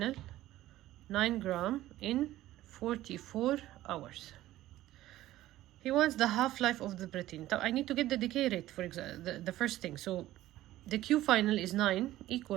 9 gram in 44 hours. He wants the half-life of the platinum. I need to get the decay rate, for example, the first thing. So the Q final is 9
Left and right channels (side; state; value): left; quieter; 15.0 dB